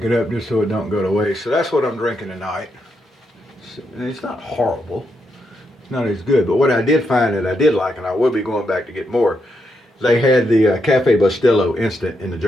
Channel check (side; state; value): both; normal; correlation 0.81